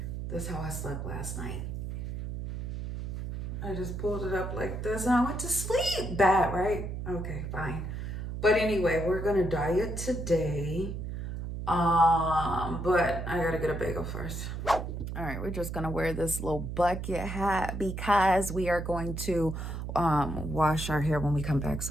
This is how I slept last night. I just pulled it up like this and I went to sleep. Bad, right? Okay, fine. But anyway, we're gonna diet today. But I gotta get a bagel first. All right, we're just gonna wear this little bucket hat because we are going to wash our hair when we come back,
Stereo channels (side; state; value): right; noise; hum, 5 dB below the sound